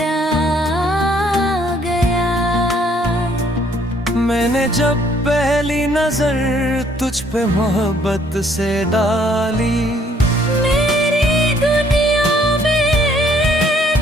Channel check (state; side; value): normal; both; correlation 0.64